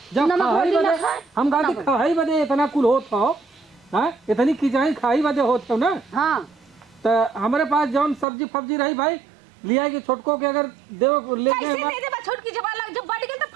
जब नमक खाई रोटी ना बदे खाए हम गाती खाई बदे इतना कुल होत हो हाँ इतनी खिंचाई खाई बदे होत हो ना हाँ तो हमारे पास जौन सब्जी फब्जी रही भाई लिया कि छोटको के अगर देव ले कैसे दे दे बा छोट की जब लग जब बढ़ गल तो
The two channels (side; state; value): left; drops out; at 8.2 s